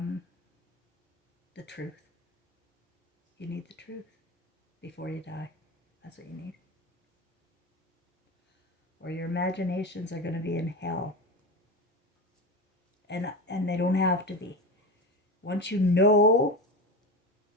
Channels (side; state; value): both; normal; correlation 0.23